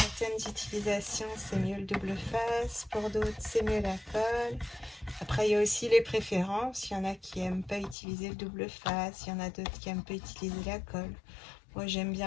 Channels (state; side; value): drops out; right; at 8.0 s